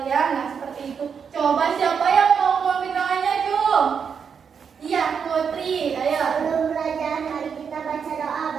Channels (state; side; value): quieter; left; 6.7 dB